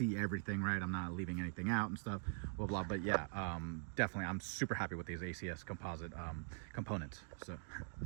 everything, right? I'm not leaving anything out and stuff, blah blah. But yeah, definitely I'm super happy with these ACS composite components. So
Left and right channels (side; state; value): left; silent; digital silence